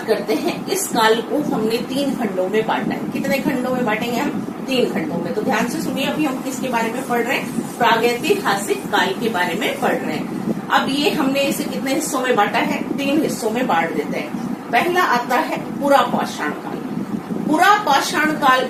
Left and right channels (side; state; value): both; identical; correlation 1.00